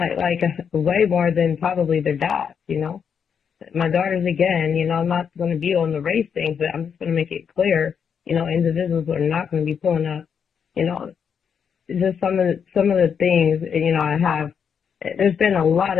Way more than probably their dads, My daughters, again, I'm not going to be on the race thing, but I'm just going to make it clear, individuals are not going to be pulling up, just some of the things, I have. There's been a lot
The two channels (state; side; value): quieter; right; 7.1 dB